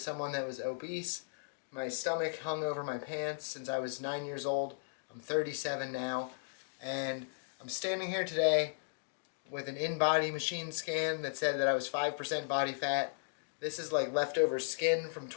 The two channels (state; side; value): silent; right; digital silence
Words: someone that was obese. My stomach hung over my pants since I was 9 years old. I'm 37 now, and I'm standing here today with an in-body machine scan that said that I was 5% body fat. This is like leftover skin from